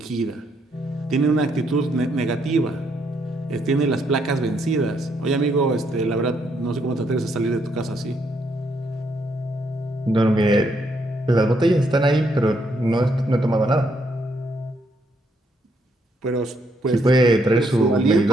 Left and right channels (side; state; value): both; normal; correlation 0.74